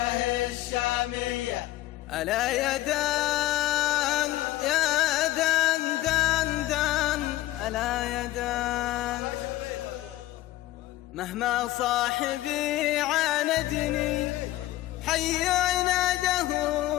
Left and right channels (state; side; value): quieter; right; 16.2 dB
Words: الشامية. ألا يا دان يا دان دان دان، ألا يا دان مهما صاحبي عاندني حي عناده